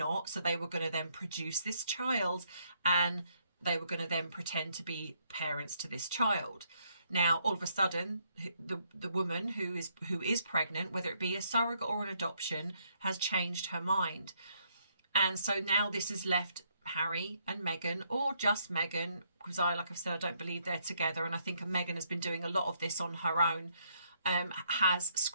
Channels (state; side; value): inverted; both; correlation -0.72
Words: So they were going to then produce this child, and they were going to then pretend to be parents to this child. Now, all of a sudden, the woman who is pregnant, whether it be a surrogate or an adoption, has changed her mind. And so now this has left Harry and Meghan, or just Meghan, because like I've said, I don't believe they're together. And I think Meghan has been doing a lot of this on her own. Has